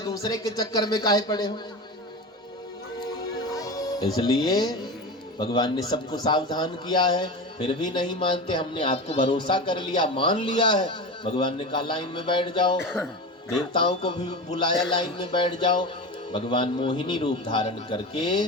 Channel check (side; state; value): both; normal; correlation 0.27